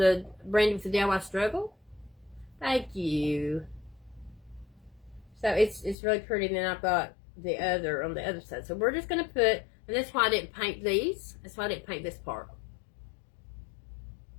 Brandy with the DIY Struggle. Thank you. So it's really pretty. And then I've got the other on the other side. So we're just going to put, and that's why I didn't paint these. That's why I didn't paint this part.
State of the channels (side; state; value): right; drops out; at 6.0 s